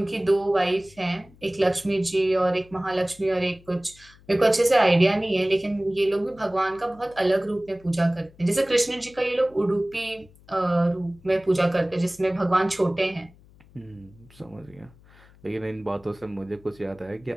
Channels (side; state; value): left; noise; hum, 26 dB below the sound